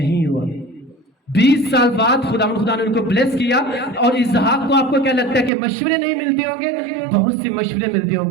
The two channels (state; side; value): drops out; left; at 5.5 s